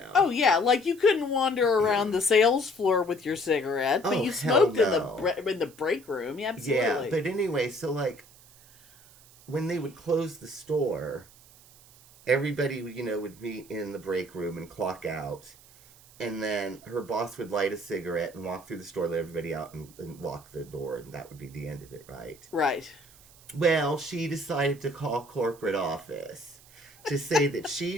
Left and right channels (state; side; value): noise; right; hiss, 24 dB below the sound